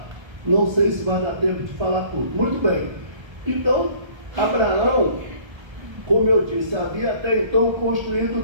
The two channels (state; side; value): late; left; 1.3 ms